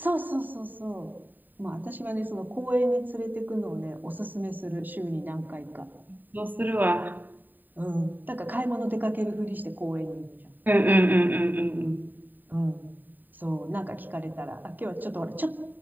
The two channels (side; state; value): left; late; 0.089 ms